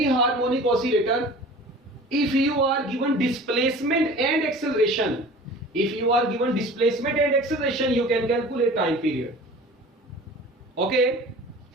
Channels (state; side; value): normal; both; correlation 0.42